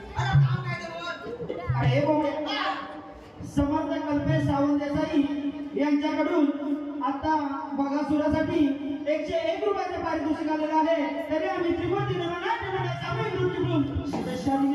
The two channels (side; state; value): both; identical; correlation 1.00